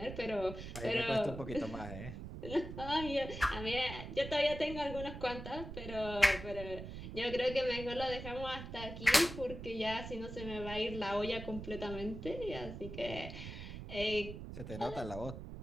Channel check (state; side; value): noise; right; rumble, 9 dB below the sound